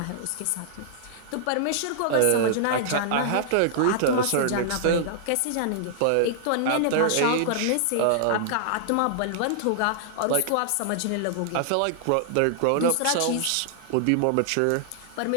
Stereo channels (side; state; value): both; different; correlation -0.01